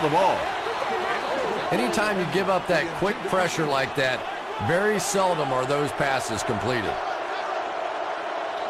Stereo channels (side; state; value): both; identical; correlation 1.00